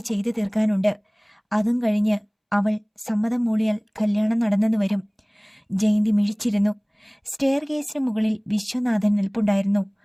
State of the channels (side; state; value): both; identical; correlation 1.00